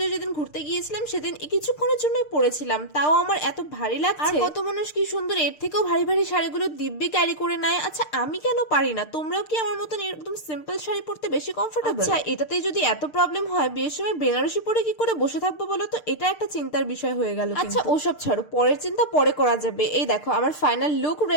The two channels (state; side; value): late; right; 6.6 ms